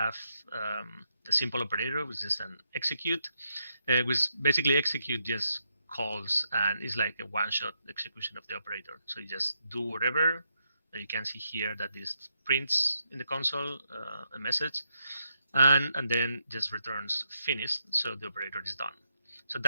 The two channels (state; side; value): inverted; both; correlation -0.81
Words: a simple operator, which is an execute, which basically execute just calls and it's like a one-shot execution of the operator. So you just do whatever. You can see here that this prints in the console a message, and then just returns finished, so the operator is done. So